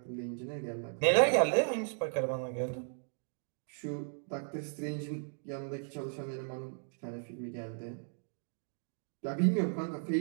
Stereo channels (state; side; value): silent; left; digital silence